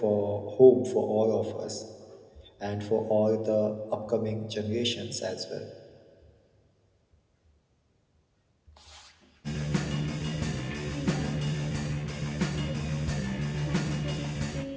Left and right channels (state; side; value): identical; both; correlation 1.00